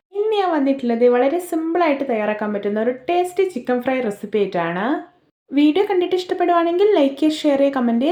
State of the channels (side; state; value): both; identical; correlation 1.00